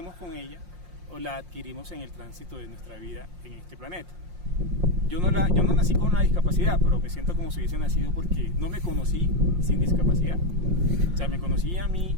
con ella o la adquirimos en el tránsito de nuestra vida en este planeta. Yo no nací con una discapacidad, pero me siento como si hubiese nacido porque no me conocí sin discapacidad. O sea, me conocí a mí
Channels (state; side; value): late; left; 5.6 ms